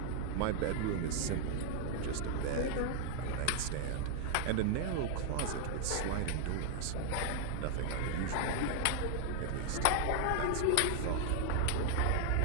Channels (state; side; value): different; both; correlation 0.00